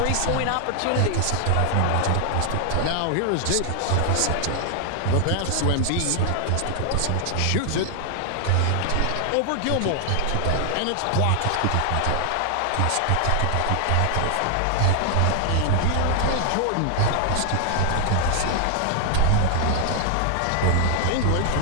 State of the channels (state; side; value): different; both; correlation 0.00